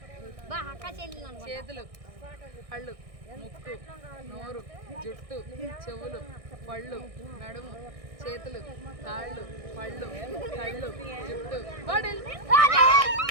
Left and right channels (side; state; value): left; late; 1.6 ms